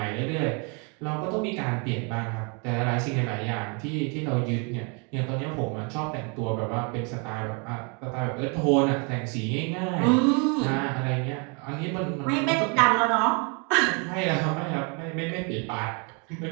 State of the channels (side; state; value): left; quieter; 34.2 dB